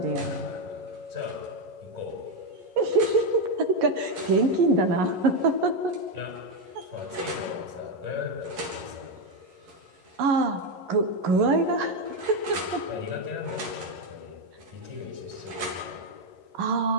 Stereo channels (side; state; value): left; late; 11 ms